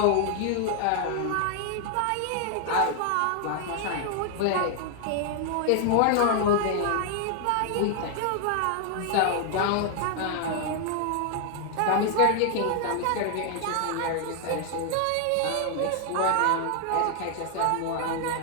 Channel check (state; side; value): different; both; correlation 0.00